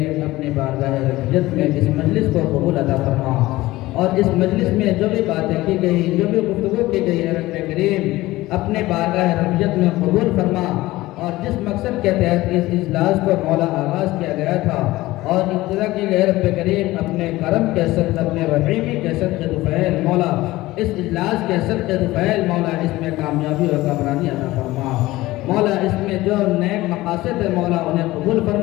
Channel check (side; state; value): right; quieter; 18.1 dB